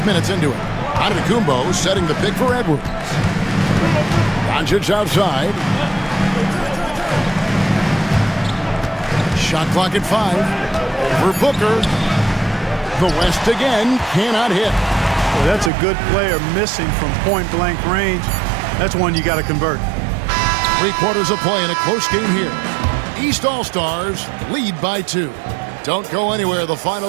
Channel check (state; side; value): drops out; left; at 15.7 s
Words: minutes into it. Antetokounmpo setting the pick for Edwards. Doncic outside. Shot clock at 5. Over Booker. The West again cannot hit. Well, that's a good player missing from point-blank range. That's one you got to convert. 3 quarters of play in a close game here. East All-Stars lead by 2. Don't go anywhere. The